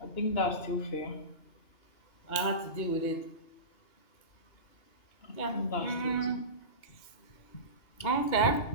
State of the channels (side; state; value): right; late; 2.8 ms